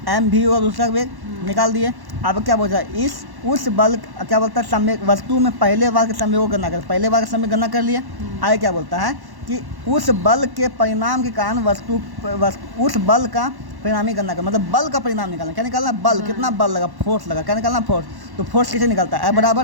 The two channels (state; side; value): late; left; 1.1 ms